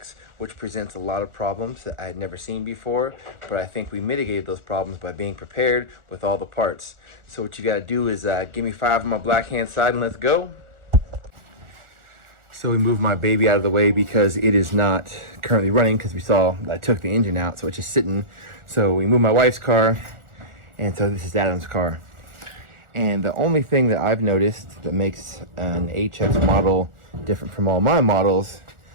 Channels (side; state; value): left; late; 1.4 ms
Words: which presents a lot of problems that I had never seen before, but I think we mitigated those problems by being prepared with all the parts. So what you gotta do is give me 5 on my black hand side and let's go. So we moved my baby out of the way because it is not currently running, because we saw I took the engine out, so it's just sitting. So we moved my wife's car, and so this is Adam's car. And the only thing that I've noticed that makes an HX model different from all my models,